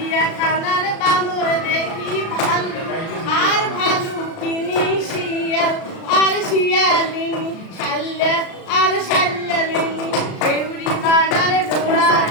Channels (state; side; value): late; right; 36 ms